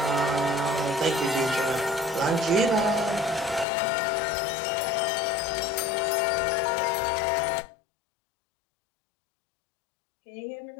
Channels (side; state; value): right; drops out; at 3.7 s